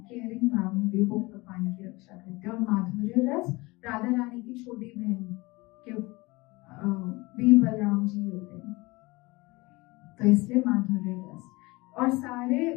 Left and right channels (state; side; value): quieter; right; 23.1 dB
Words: केयरिंग भाव में भी वो भगवान की रक्षा करते हैं। और माधुर्य रस, राधा रानी की छोटी बहन के भी बलराम जी होते हैं, तो इसलिए माधुर्य रस। और